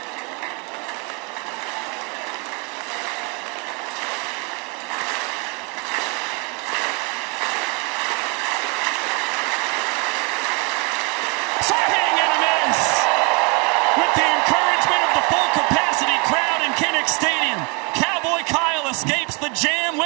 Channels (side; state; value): left; quieter; 31.9 dB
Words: With the encouragement of the full capacity crowd in Kinnick Stadium, Cowboy Kyle escapes the jam